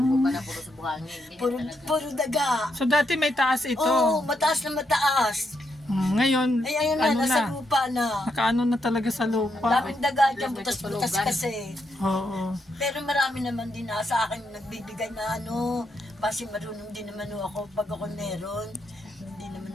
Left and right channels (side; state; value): both; normal; correlation 0.80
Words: Ba na puro sa buhangin. Puro daga. So dati may taas ito. Oo, mataas na mataas. Ngayon, Ay, ayun na, nasa lupa na. nakaano na talaga sa lupa. Daming daga dyan, butas-butas kasi. Oo. Pero marami naman din sa akin nagbibigay na kasi marunong din naman ako pag ako meron. Hindi naman